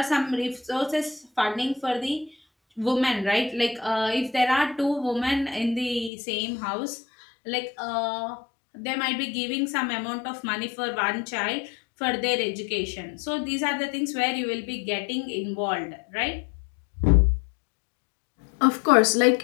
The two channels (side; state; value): right; drops out; at 6.1 s